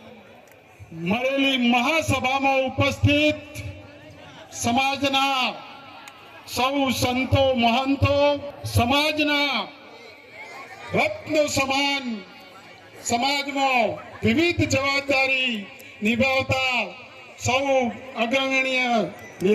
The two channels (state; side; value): identical; both; correlation 1.00